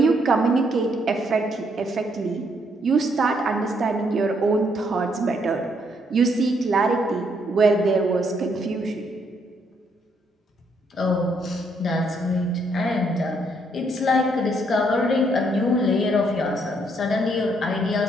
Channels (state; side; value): normal; both; correlation 0.72